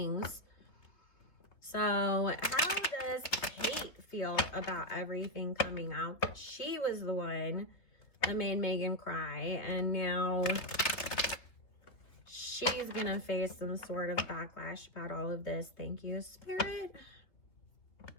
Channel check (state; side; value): late; right; 3.5 ms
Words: So how does Kate feel about everything coming out that she was the one that made Meghan cry, and now she's gonna face some sort of backlash about all of this? Thank you, Spirit.